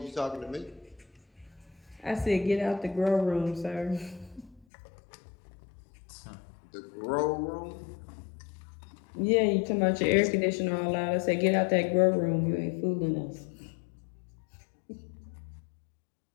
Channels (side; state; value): right; drops out; at 4.7 s